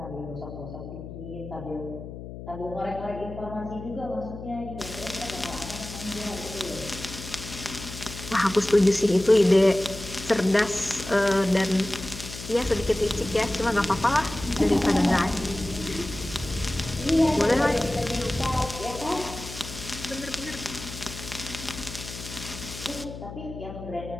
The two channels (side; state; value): left; noise; hum, 11 dB below the sound